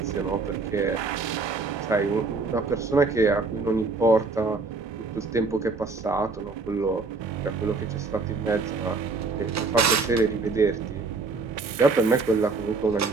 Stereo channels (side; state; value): left; quieter; 4.0 dB